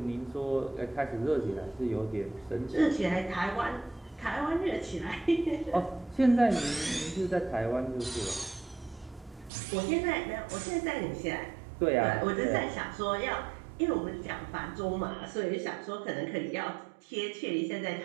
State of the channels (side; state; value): left; drops out; at 9.5 s